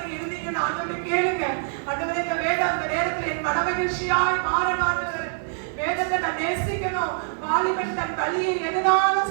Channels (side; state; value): left; silent; digital silence